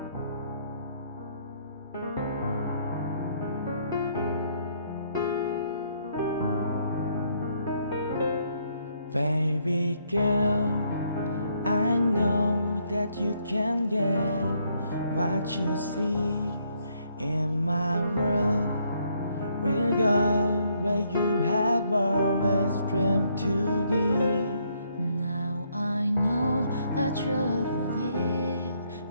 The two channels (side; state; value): both; inverted; correlation -0.71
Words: Baby girl, I know that you can get what you see in my world. We'll go where you have always dreamed to be. Now I know that you believe